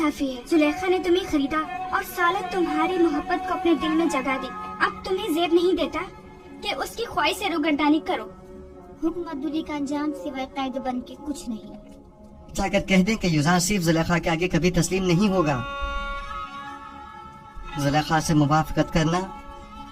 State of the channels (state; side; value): identical; both; correlation 1.00